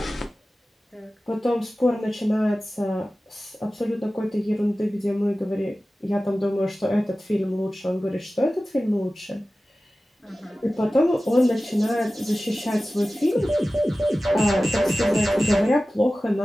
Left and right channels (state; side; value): normal; both; correlation 0.96